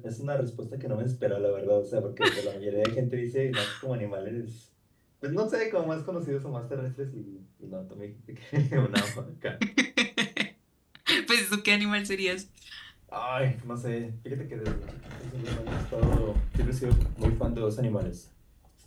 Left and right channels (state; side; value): identical; both; correlation 1.00